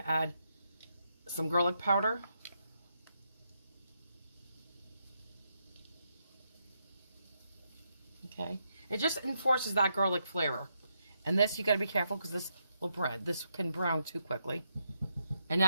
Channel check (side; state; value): both; inverted; correlation -0.80